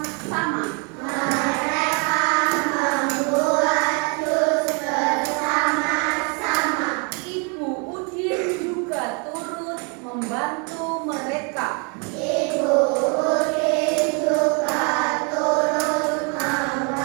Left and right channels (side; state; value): left; quieter; 35.0 dB